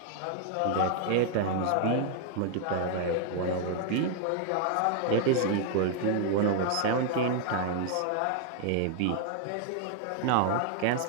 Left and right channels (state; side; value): different; both; correlation 0.00